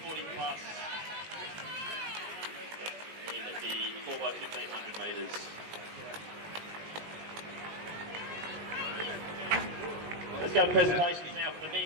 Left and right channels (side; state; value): left; late; 19 ms